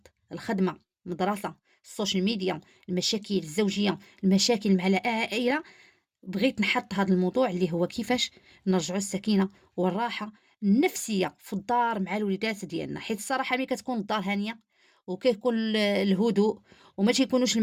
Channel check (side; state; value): both; identical; correlation 1.00